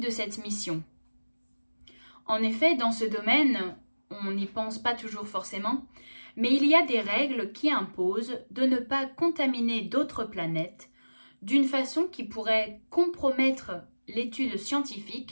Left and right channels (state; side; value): inverted; both; correlation -1.00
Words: cette mission. En effet, dans ce domaine, on n'y pense pas toujours forcément, mais il y a des règles qui imposent de ne pas contaminer d'autres planètes d'une façon qui pourrait compromettre l'étude